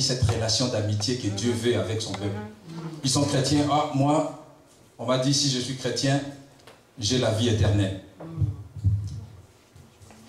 cette relation d'amitié que Dieu veut avec son peuple. Ils sont chrétiens. Ah, moi, on m'a dit, si je suis chrétien, j'ai la vie éternelle.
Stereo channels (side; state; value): both; identical; correlation 1.00